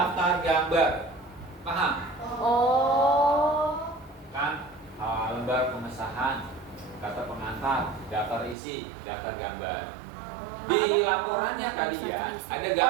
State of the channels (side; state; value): left; drops out; at 8.6 s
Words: gambar. Paham? Oh. Kan lembar pengesahan, kata pengantar, daftar isi, daftar gambar. Di laporannya kalian ada